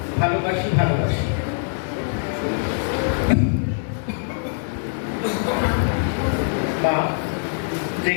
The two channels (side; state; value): right; silent; digital silence